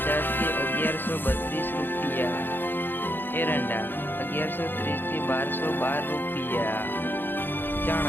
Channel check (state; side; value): late; right; 0.097 ms